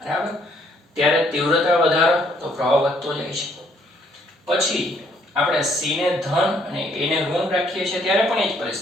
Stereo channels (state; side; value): normal; both; correlation 0.66